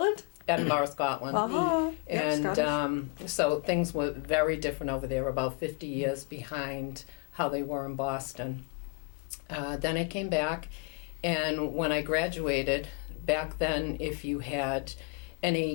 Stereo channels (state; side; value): quieter; right; 32.9 dB